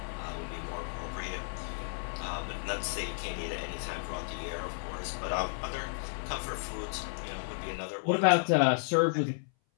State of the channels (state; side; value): silent; right; 56 dB below the other